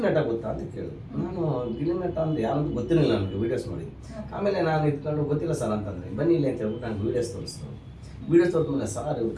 ನಟ ಗೊತ್ತಾ ಅಂತ ಕೇಳಿದ್ರು. ನಾನು ಗಿಲ್ಲಿ ನಟ ಅಂದರೆ ಯಾರಂತೂ ಗೊತ್ತಿರಲಿಲ್ಲ ನನಗೆ, ವೀಡಿಯೋಸ್ ನೋಡಿ. ಆಮೇಲೆ ನಾನು ಇಟ್ಕೊಂಡು ಗೊತ್ತಿಲ್ಲ ಸರ್ ಅಂತಂದರೆ, ಬನ್ನಿ ಇಲ್ಲಿ ಅಂತ ಹೇಳ್ಬಿಟ್ಟು ನಾನು ವೀಡಿಯೋಸ್ ತೋರಿಸಿದ್ರು. ವೀಡಿಯೋಸ್ ತೋರಿದ್ಮೇಲೆ ಸರ್ ಇವ್ರು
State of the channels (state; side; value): identical; both; correlation 1.00